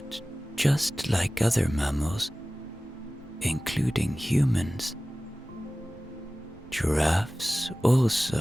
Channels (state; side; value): normal; both; correlation 0.97